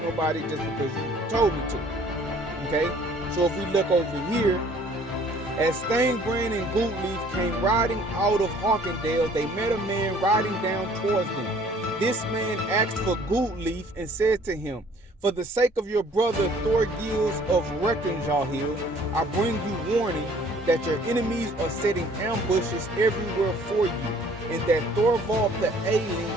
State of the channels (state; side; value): normal; both; correlation 0.56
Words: just because you told me to. Okay, so if we look over here, as Thangbrand and Gootlieb came riding out of Hawkendale, they met a man riding down towards them. This man asked for Gootlieb and said to him, for the sake of your brother Thorgils of Reckenshahill, I bring you warning that your enemies are setting ambushes everywhere for you, and that Thorvald the Alien